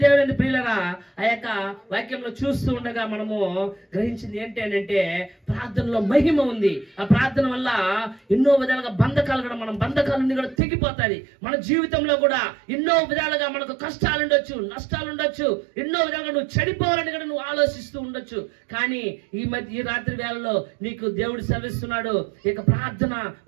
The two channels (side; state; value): left; drops out; at 10.6 s